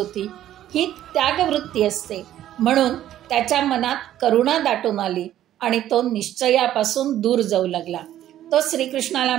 ही त्यागवृत्ती असते. म्हणून त्याच्या मनात करुणा दाटून आली आणि तो निश्चयापासून दूर जाऊ लागला. तो श्रीकृष्णाला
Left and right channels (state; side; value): quieter; left; 12.3 dB